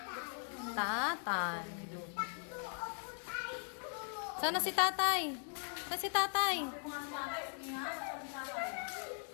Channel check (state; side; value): silent; right; 51 dB below the other